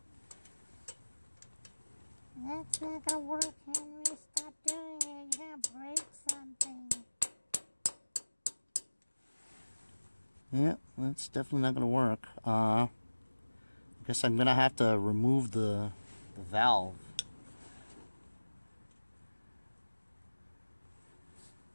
That's not gonna work, Henry. Stop doing it. You're gonna break something. Yeah, that's definitely not gonna work. I guess I'm gonna have to remove the valve.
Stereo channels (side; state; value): both; inverted; correlation -1.00